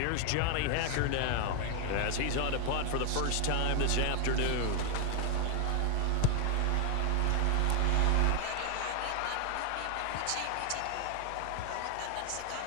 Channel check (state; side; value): different; both; correlation 0.01